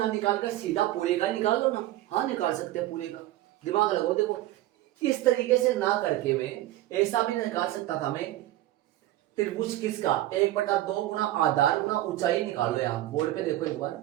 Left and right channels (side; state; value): left; quieter; 15.3 dB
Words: निकालकर सीधा पूरे का निकाल दो ना, हाँ निकाल सकते हैं पूरे का, दिमाग लगाओ। देखो इस तरीके से ना करके मैं ऐसा भी निकाल सकता था, मैं त्रिभुज किसका 1/2 गुणा आधार गुणा ऊंचाई निकालो, यार बोर्ड पे देखो एक बार,